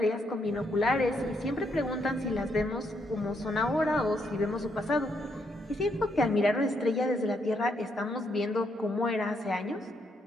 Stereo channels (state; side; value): normal; both; correlation 0.76